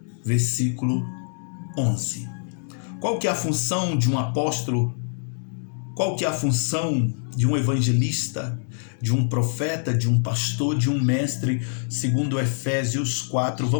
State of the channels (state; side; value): silent; right; digital silence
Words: versículo 11. Qual que é a função de um apóstolo? Qual que é a função de um evangelista, de um profeta, de um pastor, de um mestre, segundo Efésios 4,